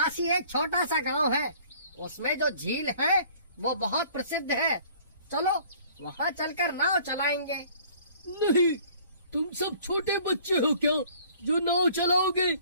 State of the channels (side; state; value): both; inverted; correlation -0.54